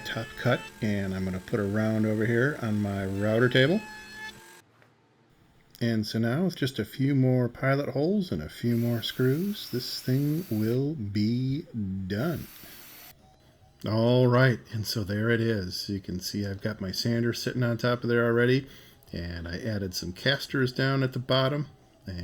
cut, and I'm going to put a round over here on my router table. And so now with just a few more pilot holes and a few more screws, this thing will be done. All right, and so there it is. You can see I've got my sander sitting on top of there already. And I added some casters down at the bottom,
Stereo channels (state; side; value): identical; both; correlation 1.00